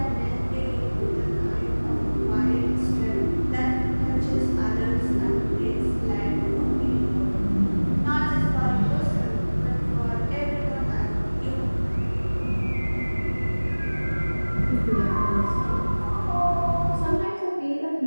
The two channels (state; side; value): inverted; both; correlation -1.00